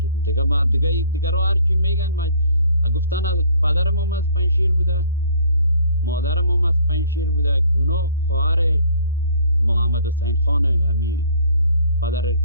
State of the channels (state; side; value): inverted; both; correlation -0.55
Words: دیگه. ما دیگه رو هرچی میگن ما گفتن از پدرم هم از پنشیر بوده، مادرم هم از پنشیر بوده. اونا خواهر محمد حسین خان همی پدر